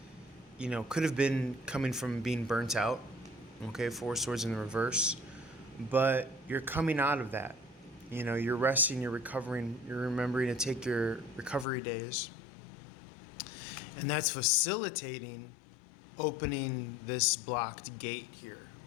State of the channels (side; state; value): right; drops out; at 11.7 s